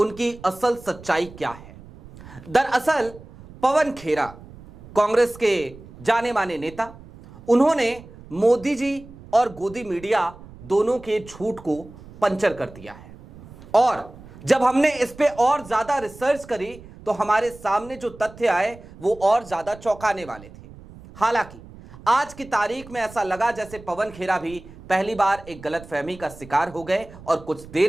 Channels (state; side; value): noise; right; rumble, 19 dB below the sound